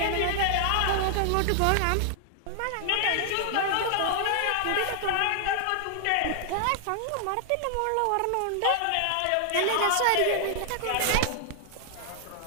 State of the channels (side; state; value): both; different; correlation 0.00